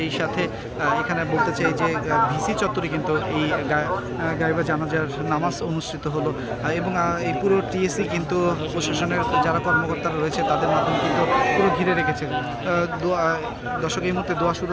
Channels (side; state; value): both; identical; correlation 1.00